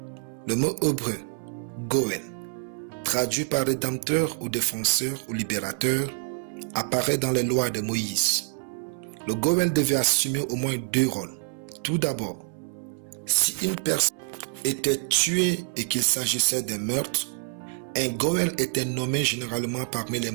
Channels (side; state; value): left; silent; 60 dB below the other